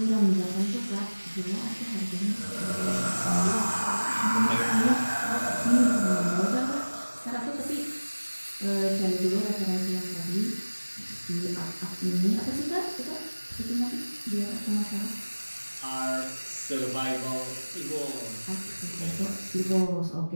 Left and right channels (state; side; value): inverted; both; correlation -1.00